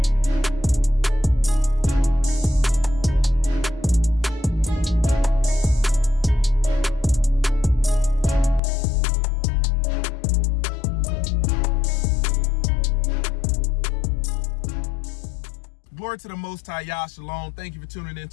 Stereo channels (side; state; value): right; drops out; at 8.6 s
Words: Glory to the Most High, YAH, Shalom. Thank you for tuning in